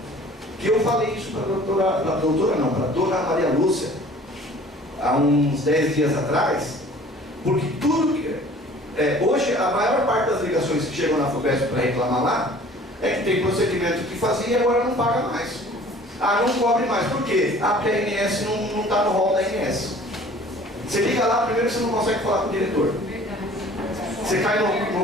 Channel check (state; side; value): normal; both; correlation 0.49